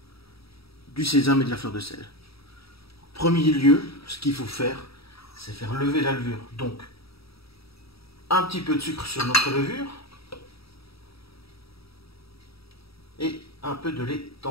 du sésame et de la fleur de sel. En premier lieu, ce qu'il faut faire, c'est faire lever la levure. Donc, un petit peu de sucre sur notre levure et un peu de lait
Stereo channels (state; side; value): late; right; 0.76 ms